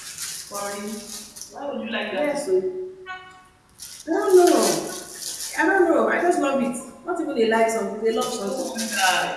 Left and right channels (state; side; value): identical; both; correlation 1.00